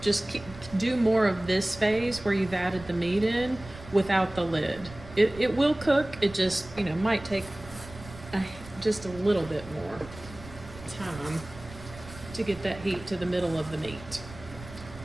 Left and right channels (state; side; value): noise; right; rumble, 16 dB below the sound